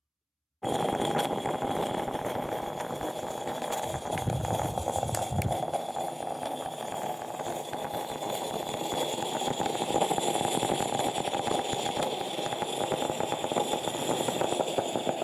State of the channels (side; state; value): both; identical; correlation 1.00